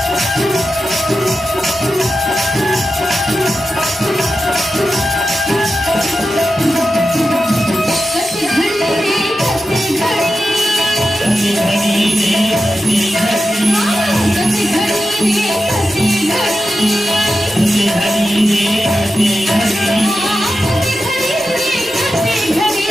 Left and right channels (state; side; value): normal; both; correlation 0.91